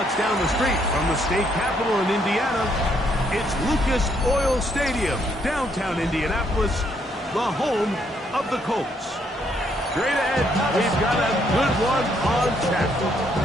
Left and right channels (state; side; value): normal; both; correlation 0.71